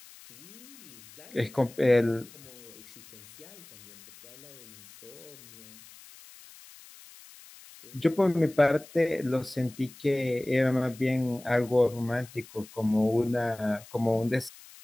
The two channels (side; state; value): left; noise; hiss, 20 dB below the sound